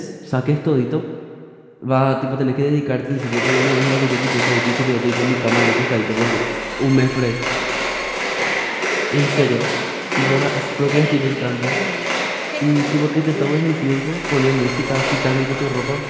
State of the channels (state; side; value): identical; both; correlation 1.00